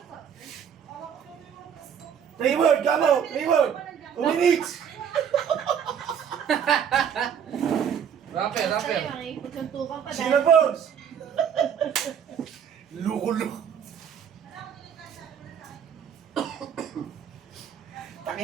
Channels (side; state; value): left; quieter; 8.1 dB